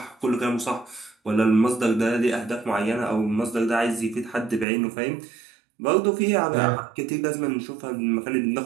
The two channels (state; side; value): drops out; left; at 4.7 s